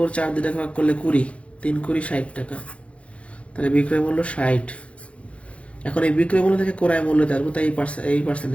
4 দিয়ে ভাগ করলে 20, 3 20 60 টাকা। তাহলে বিক্রয় মূল্য 60। এখন এই বিক্রয় মূল্য থেকে ক্রয় মূল্য আসবো, তাই এই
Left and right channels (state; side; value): late; right; 0.062 ms